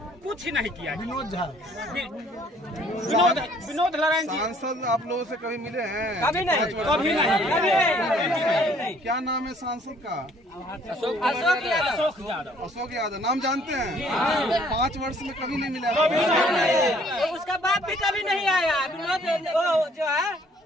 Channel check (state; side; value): normal; both; correlation 0.60